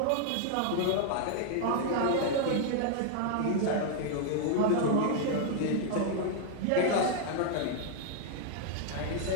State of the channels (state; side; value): different; both; correlation 0.00